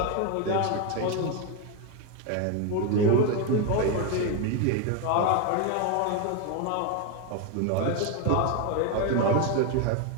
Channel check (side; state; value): both; different; correlation 0.02